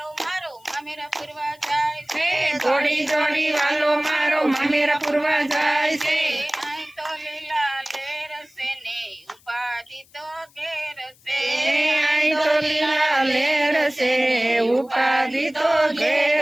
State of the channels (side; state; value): left; noise; hiss, 29 dB below the sound